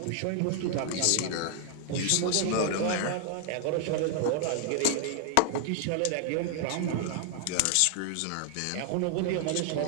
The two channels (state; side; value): different; both; correlation 0.00